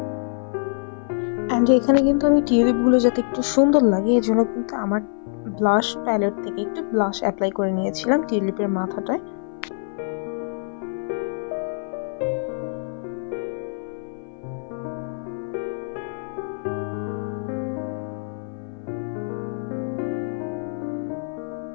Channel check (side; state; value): right; silent; 58 dB below the other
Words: অ্যান্ড এখানে কিন্তু আমি টিউলিপগুলো যাতে একটু সুন্দর লাগে এই জন্য কিন্তু আমার ব্লাশ প্যালেট থেকে একটু ব্লাশ অ্যাপ্লাই করে নিয়েছিলাম টিউলিপের মাথাটায়।